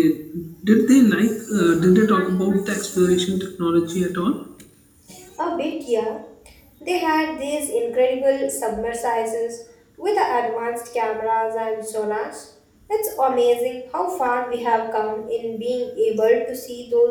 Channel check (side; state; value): both; identical; correlation 1.00